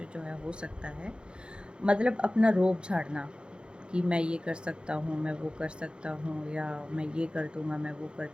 जो है हो सकता है। मतलब अपना रोब झाड़ना कि मैं ये कर सकता हूँ, मैं वो कर सकता हूँ, या मैं ये कर दूँगा, मैं वो कर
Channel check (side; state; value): left; late; 0.053 ms